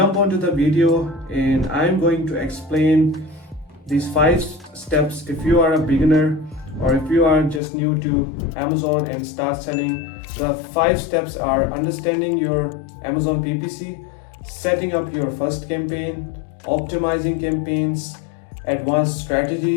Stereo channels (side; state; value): right; drops out; at 7.6 s